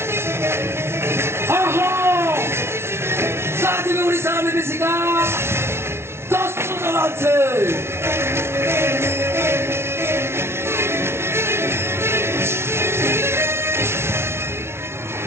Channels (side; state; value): left; late; 0.12 ms